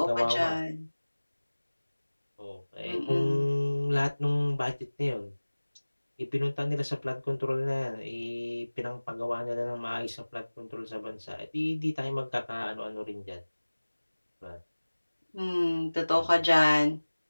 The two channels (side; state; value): both; inverted; correlation -1.00